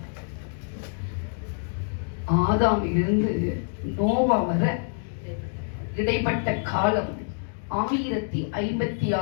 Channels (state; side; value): silent; right; digital silence